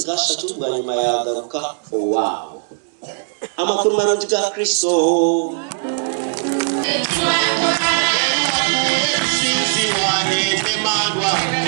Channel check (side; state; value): left; silent; digital silence